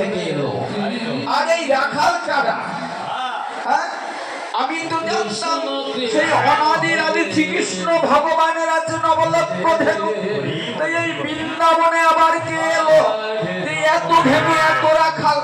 এলো, আর এই রাখাল কারা? আমি তো জানতাম সেই অনাদির আদি শ্রীকৃষ্ণ ভগবানের আছে নবলক্ষ ধেনু। এই বৃন্দাবনে আবার কে এলো? এত ধেনু এত রাখাল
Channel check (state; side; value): identical; both; correlation 1.00